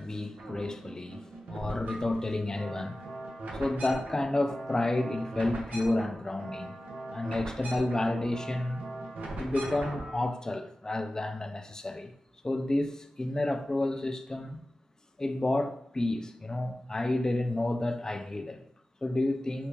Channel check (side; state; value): both; normal; correlation 0.96